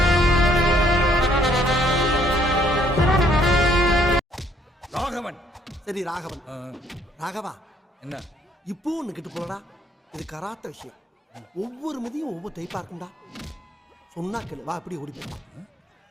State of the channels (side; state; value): both; normal; correlation 0.65